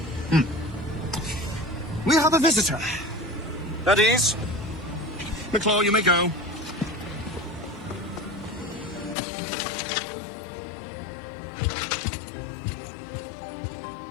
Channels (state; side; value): drops out; right; at 9.2 s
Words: We have a visitor. At ease. Nicklaw, you may go.